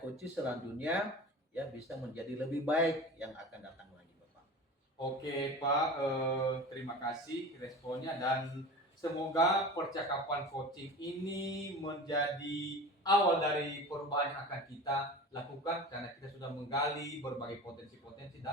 selanjutnya ya bisa menjadi lebih baik yang akan datang lagi Bapak. Oke Pak, terima kasih responnya dan semoga percakapan coaching ini menjadi awal dari perubahan yang akan kita lakukan karena kita sudah menggali berbagai potensi-potensi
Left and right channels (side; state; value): both; normal; correlation 0.35